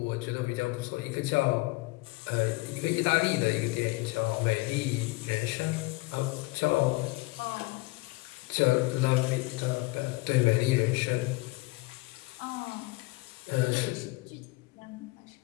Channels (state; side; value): quieter; right; 23.6 dB